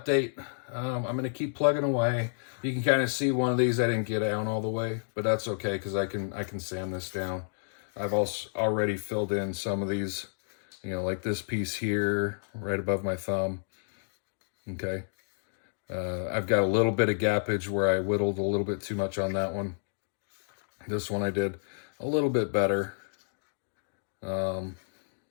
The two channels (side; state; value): right; silent; digital silence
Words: I'm going to keep plugging away. You can kind of see one of these I didn't get down all the way, but that's okay because I can sand this down. I've also already filled in some of these, you know, like this piece here right above my thumb. Okay. I've got a little bit of gappage where I whittled a little bit too much on that one. This one I did a little bit better.